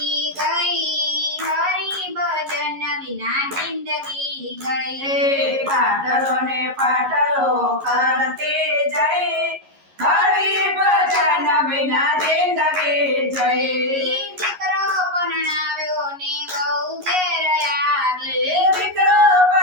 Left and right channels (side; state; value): left; late; 11 ms